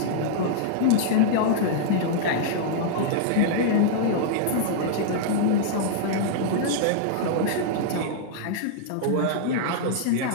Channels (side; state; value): both; different; correlation -0.01